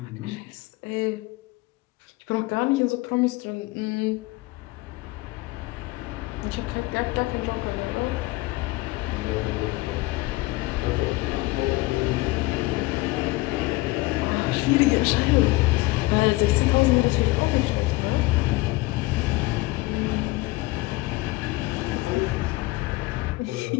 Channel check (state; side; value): quieter; right; 20.9 dB